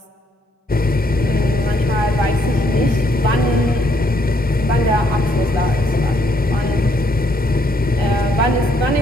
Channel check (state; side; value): normal; both; correlation 0.70